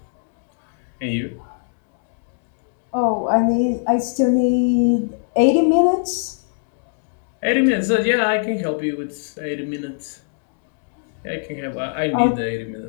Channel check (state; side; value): silent; right; digital silence